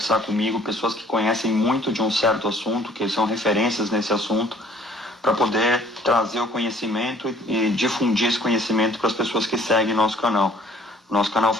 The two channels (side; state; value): both; normal; correlation 0.57